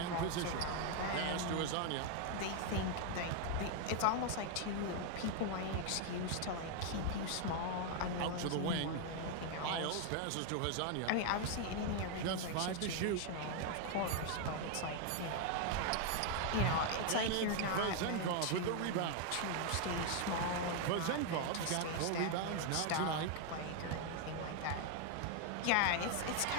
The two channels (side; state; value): both; different; correlation 0.00